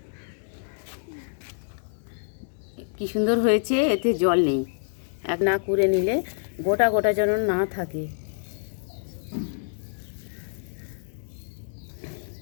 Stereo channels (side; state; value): right; silent; digital silence